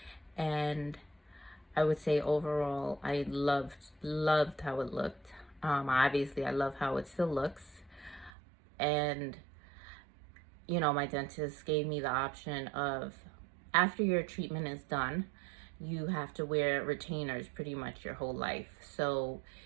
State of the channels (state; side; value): drops out; left; at 8.3 s